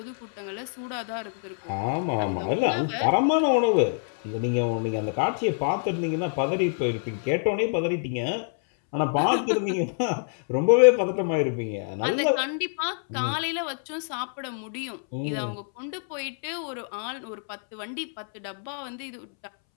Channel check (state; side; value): silent; right; 61 dB below the other